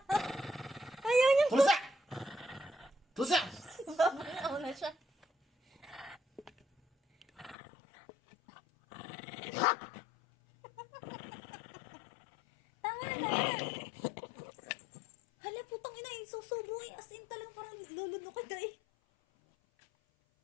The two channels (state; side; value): drops out; right; at 7.6 s